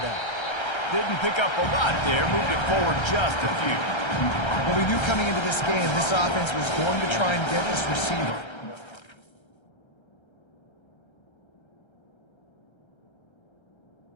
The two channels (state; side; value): late; right; 1.3 ms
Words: Didn't pick up a lot there, moved it forward just a few. Well, we knew coming into this game, this offense was going to try and get this receiver.